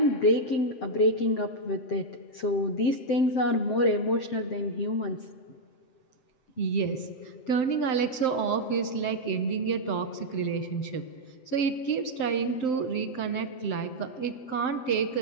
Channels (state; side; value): late; right; 7.8 ms